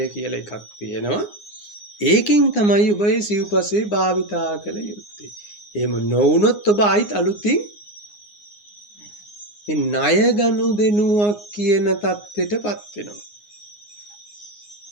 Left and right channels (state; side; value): late; right; 9.7 ms